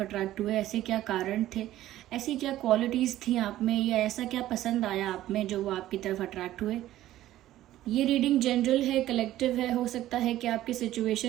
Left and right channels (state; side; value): quieter; left; 14.1 dB